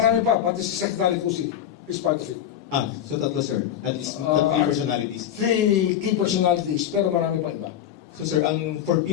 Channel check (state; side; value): quieter; right; 10.4 dB